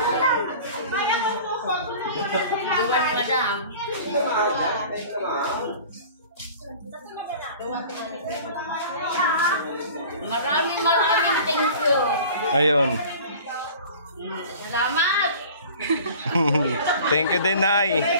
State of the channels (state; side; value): inverted; both; correlation -0.43